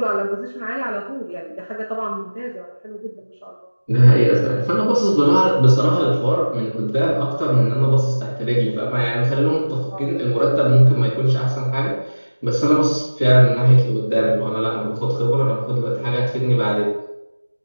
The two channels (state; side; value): inverted; both; correlation -1.00